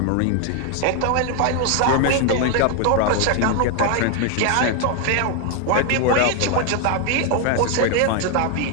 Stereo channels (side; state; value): both; different; correlation 0.01